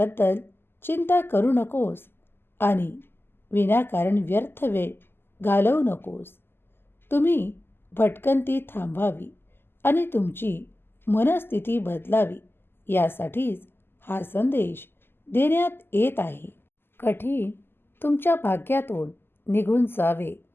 चिंता करू नकोस आणि विनाकारण व्यर्थ वेळ घालवू नकोस. तुम्ही भटकंती थांबावी आणि तुमची मनस्थिती बदलावी यासाठीच हा संदेश देण्यात येत आहे. कठीण तुमच्या भाग्यातून निघून जावे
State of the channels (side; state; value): right; late; 0.11 ms